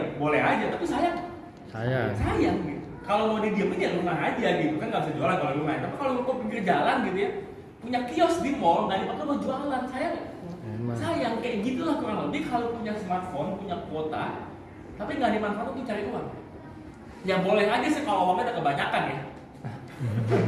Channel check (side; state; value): both; identical; correlation 1.00